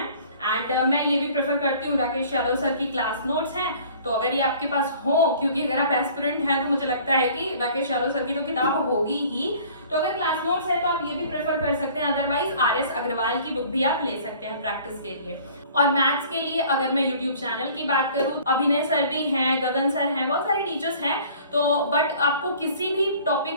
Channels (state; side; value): inverted; both; correlation -0.50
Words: एंड मैं ये भी प्रेफर करती हूँ राकेश यादव सर की क्लास नोट्स हैं, तो अगर ये आपके पास हो, क्योंकि अगर आप एस्पिरेंट हैं तो मुझे लगता है कि राकेश यादव सर की तो किताब होगी ही, तो अगर क्लास नोट्स है तो आप ये भी प्रेफर कर सकते हैं। अदरवाइज RS अग्रवाल की बुक भी आप ले सकते हैं प्रैक्टिस के लिए। और मैथ्स के लिए अगर मैं यूट्यूब चैनल की बात करूँ, अभिनय सर भी हैं, गगन सर हैं, बहुत सारे टीचर्स हैं, तो बट आपको किसी भी